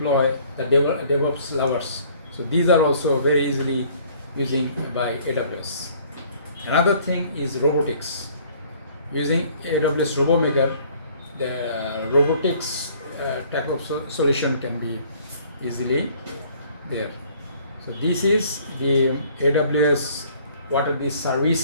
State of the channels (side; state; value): both; inverted; correlation -0.57